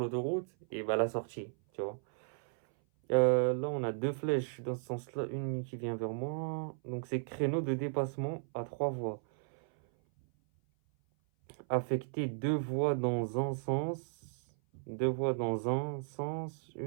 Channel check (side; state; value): left; silent; 54 dB below the other